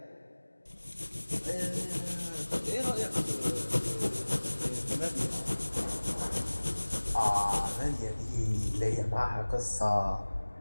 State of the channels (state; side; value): inverted; both; correlation -1.00